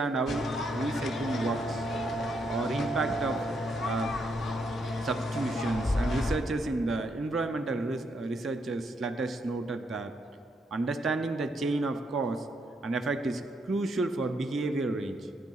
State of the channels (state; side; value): normal; both; correlation 0.77